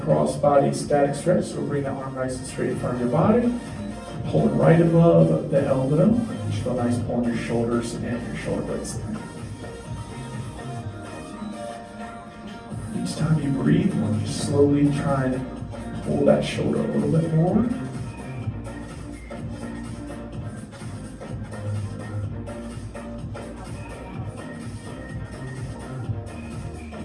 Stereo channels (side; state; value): both; identical; correlation 1.00